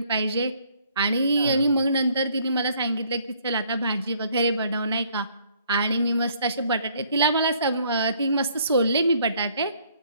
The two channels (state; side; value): inverted; both; correlation -0.63